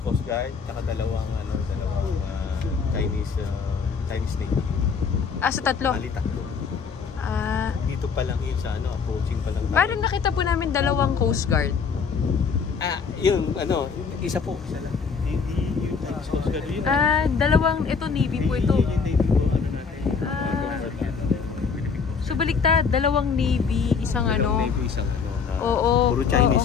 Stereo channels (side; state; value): right; quieter; 5.7 dB